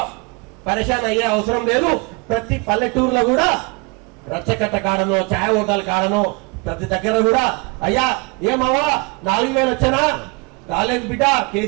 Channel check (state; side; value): quieter; left; 30.0 dB